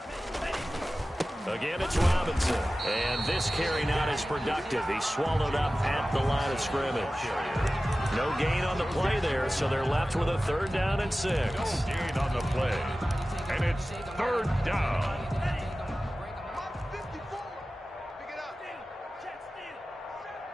Again, it's Robinson. And this carry not as productive. He's swallowed up at the line of scrimmage. No gain on the play there, so they're left with a 3rd down and 6. No gain on the play. And it's 3rd down. Mark 54. Pick it up. Check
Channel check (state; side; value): normal; both; correlation 0.96